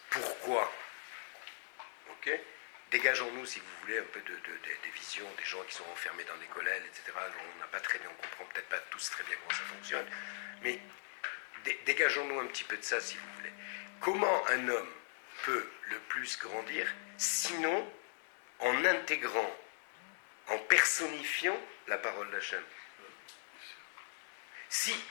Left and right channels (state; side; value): silent; right; digital silence